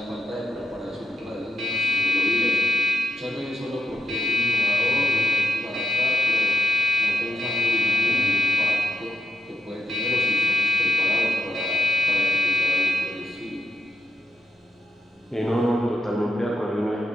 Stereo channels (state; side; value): normal; both; correlation 0.83